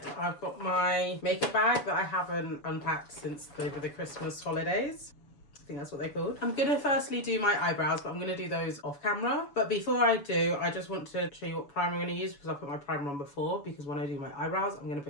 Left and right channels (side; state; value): right; late; 7.0 ms